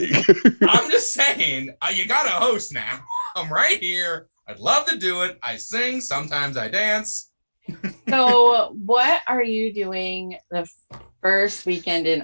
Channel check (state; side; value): inverted; both; correlation -1.00